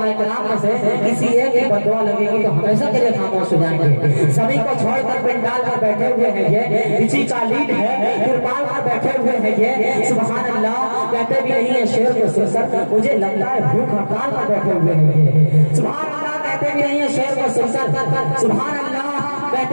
किराम में से किसी एक की बददुआ लगेगी तो हमेशा के लिए खामोश हो जाएंगे। सभी को छोड़कर पंडाल पर बैठे हुए हैं, ये किसी का लीड है, तिरपाल पर बैठे हुए हैं, ये सुभान अल्लाह कहते भी नहीं है शेर को सुनकर, मुझे लगता है भूख हड़ताल पर बैठे हुए हैं। सुभान अल्लाह कहते भी नहीं है शेर को सुनकर, सुभान अल्लाह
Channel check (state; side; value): inverted; both; correlation -1.00